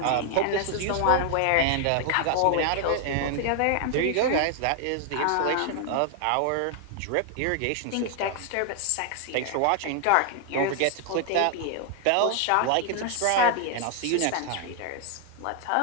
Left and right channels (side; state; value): both; different; correlation 0.00